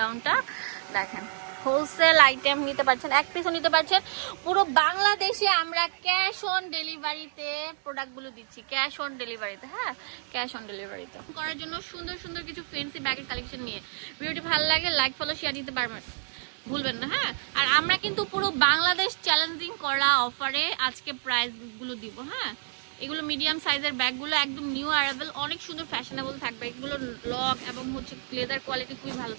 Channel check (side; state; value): left; silent; digital silence